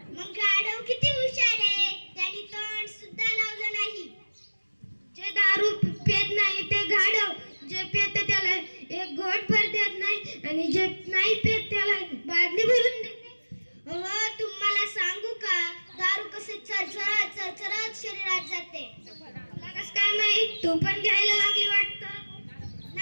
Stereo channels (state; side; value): inverted; both; correlation -1.00